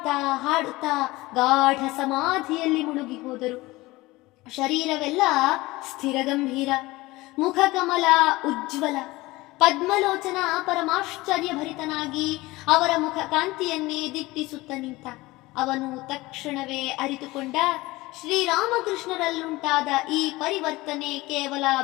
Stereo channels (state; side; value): quieter; right; 20.2 dB